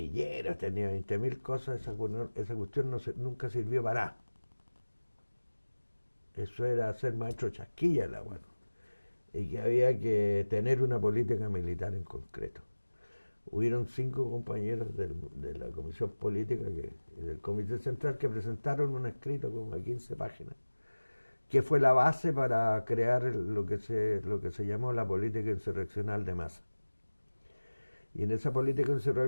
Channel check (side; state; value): both; inverted; correlation -1.00